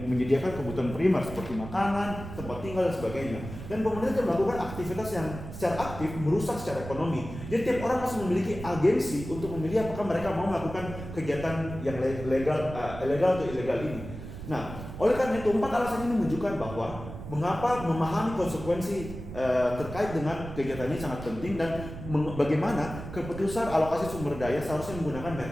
kebutuhan primer seperti makanan, tempat tinggal, dan sebagainya. Dan pemerintah tidak melakukan aktivitas yang secara aktif merusak secara ekonomi. Jadi tiap orang masih memiliki agensi untuk memilih apakah mereka mau melakukan kegiatan yang legal atau ilegal ini. Nah, oleh karena itu 4 alasan ini menunjukkan bahwa mengapa memahami konsekuensi terkait dengan kegiatan ini sangat penting, dan bagaimana keputusan alokasi sumber daya seharusnya menggunakan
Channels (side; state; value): right; noise; rumble, 11 dB below the sound